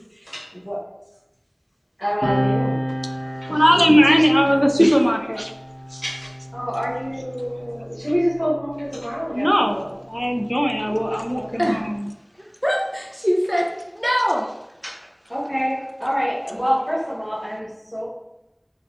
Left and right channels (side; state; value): both; identical; correlation 1.00